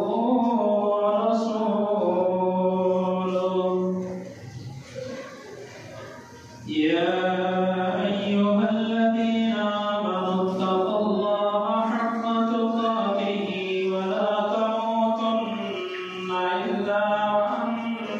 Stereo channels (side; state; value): both; identical; correlation 1.00